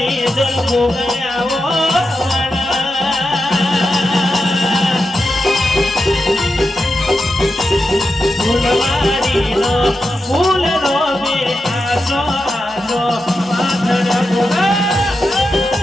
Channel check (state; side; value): normal; both; correlation 0.89